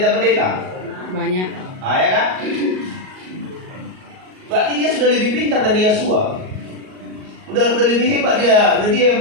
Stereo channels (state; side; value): late; left; 38 ms